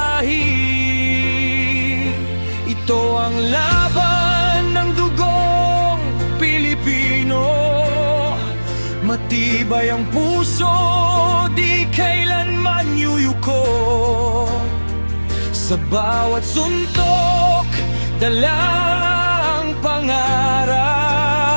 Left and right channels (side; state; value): both; inverted; correlation -1.00